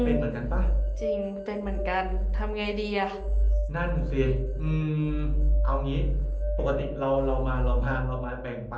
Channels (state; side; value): identical; both; correlation 1.00